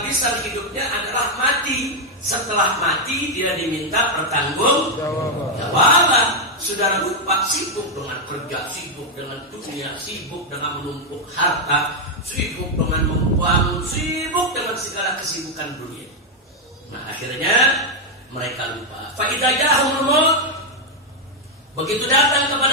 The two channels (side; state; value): both; normal; correlation 0.01